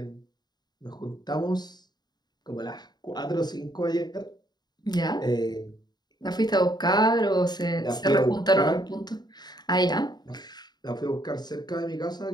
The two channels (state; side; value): late; right; 0.20 ms